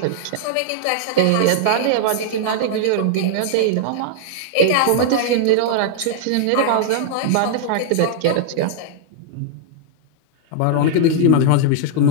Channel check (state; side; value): different; both; correlation -0.01